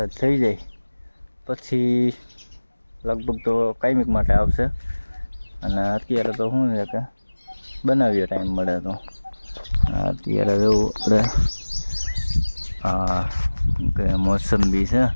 થઈ જાય પછી લગભગ તો કાયમિક માટે આવશે. અને અત્યારે તો શું છે કે બનાવીએ ટાઈમ મળે તો. અત્યારે જેવું આપણે કે મોસંબી છે,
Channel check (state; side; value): inverted; both; correlation -1.00